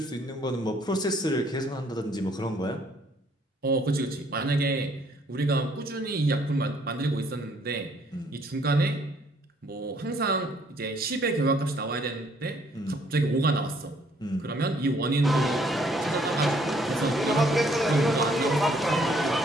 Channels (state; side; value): normal; both; correlation 0.64